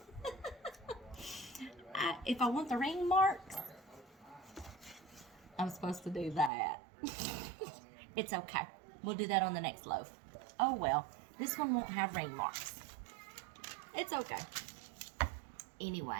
If I want the ring marks, I'm supposed to do that. It's okay. We'll do that on the next loaf. Oh well, this one won't have ring marks. It's okay.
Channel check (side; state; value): left; drops out; at 6.5 s